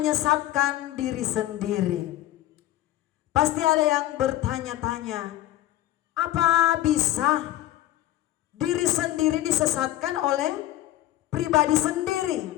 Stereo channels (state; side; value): quieter; right; 14.5 dB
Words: diri sendiri. Pasti ada yang bertanya-tanya, apa bisa diri sendiri disesatkan oleh pribadi sendiri?